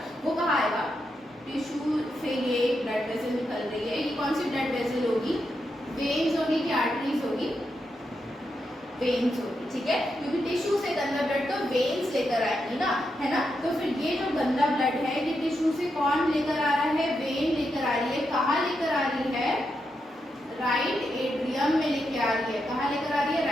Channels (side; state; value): both; normal; correlation 0.84